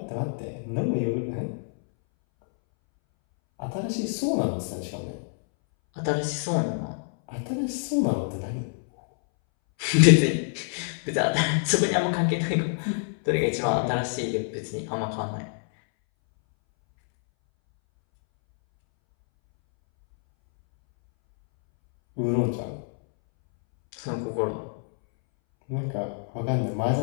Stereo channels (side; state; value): right; silent; 61 dB below the other